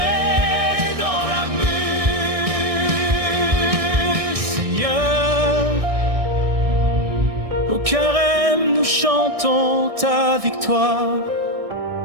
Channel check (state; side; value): late; left; 1.6 ms